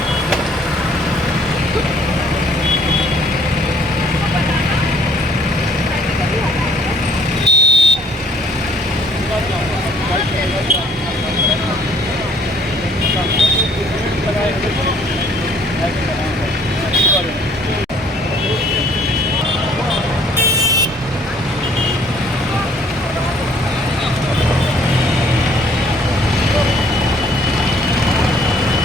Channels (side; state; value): both; normal; correlation 0.60